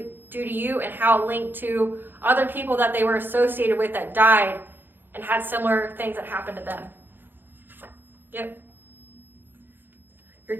to you and how it linked to other people that they were associated with that died and had similar things that happened to them. Yep. Your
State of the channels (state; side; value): late; left; 0.096 ms